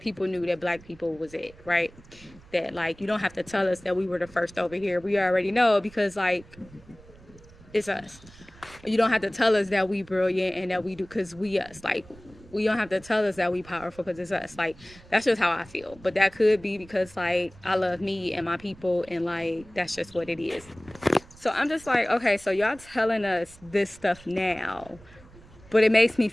knew that black people was it, right? That, like, you don't have to tell us that we were the first over here. We already know because, like, it's us. You don't have to tell us that we brilliant and that we do because we us. Like, we don't have to tell us that we powerful because it's us. Like, that's just how I feel. But that could be because, like, I love me and my people, and, like, that's just what it is. So I'm just like, okay, so y'all telling us this stuff now, but it makes me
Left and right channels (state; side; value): noise; right; rumble, 23 dB below the sound